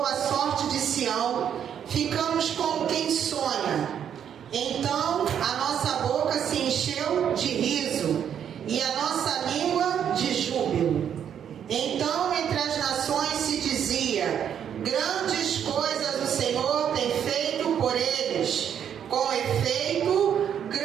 a sorte de Sião, ficamos como quem sonha. Então a nossa boca se encheu de riso e a nossa língua de júbilo. Então entre as nações se dizia: grandes coisas o Senhor tem feito por eles. Com efeito,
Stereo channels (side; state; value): left; quieter; 8.8 dB